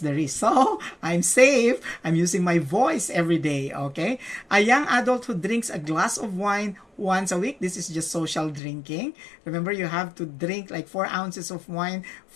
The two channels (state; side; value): drops out; right; at 8.6 s